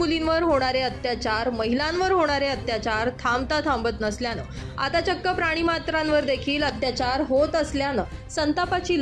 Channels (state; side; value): identical; both; correlation 1.00